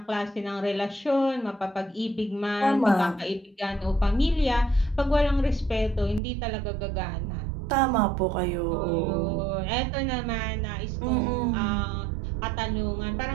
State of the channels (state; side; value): drops out; left; at 6.2 s